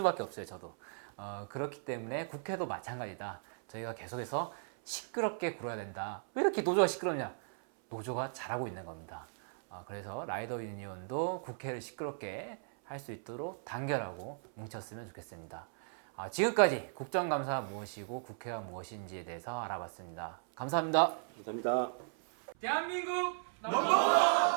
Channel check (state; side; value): silent; left; 54 dB below the other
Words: 없어요. 저도 그렇기 때문에 국회도 마찬가지다. 저희가 계속해서 시끄럽게 굴어야 된다. 왜 이렇게 노조가 시끄럽냐? 노조가 잘하고 있는 겁니다. 그래서 라이더 유니온도 국회를 시끄럽게 할 수 있도록 단결하고 뭉쳤으면 좋겠습니다. 지금까지 국정감사가 무엇이고 국회가 무엇인지에 대해서 알아봤습니다. 감사합니다. 감사합니다. 대한민국